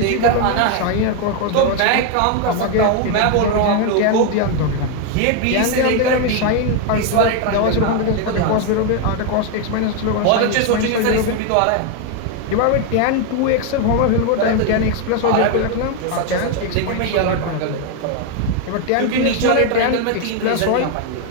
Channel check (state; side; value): different; both; correlation 0.01